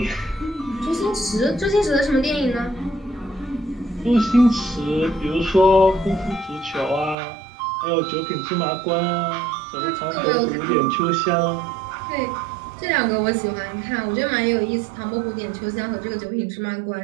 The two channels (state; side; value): drops out; left; at 7.2 s